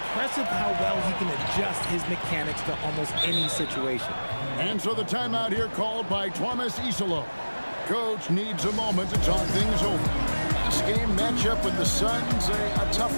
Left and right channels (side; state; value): both; inverted; correlation -1.00